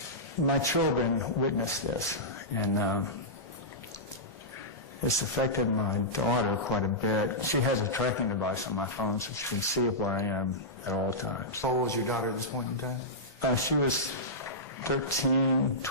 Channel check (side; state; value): both; normal; correlation -0.14